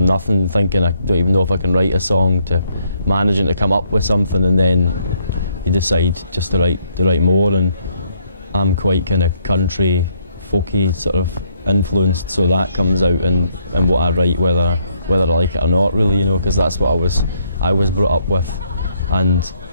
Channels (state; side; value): inverted; both; correlation -0.71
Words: nothing, thinking I don't even know if I can write a song, to managing to come up with something, and then you decide just to write more. And I'm quite kind of country, folky sort of influenced, so that comes out in what I write, whether I like it or not, really, you know, because that's what I was brought up with. And